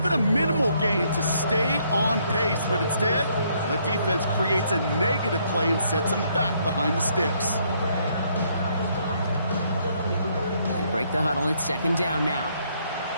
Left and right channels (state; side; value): inverted; both; correlation -0.70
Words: a minimal gain to stay on pace, but instead, the defense creates a negative play and sets them back behind the sticks. They break the huddle. It's 2nd down now.